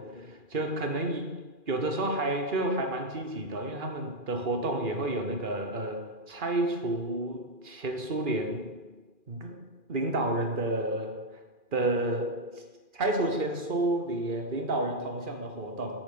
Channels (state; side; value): late; left; 2.4 ms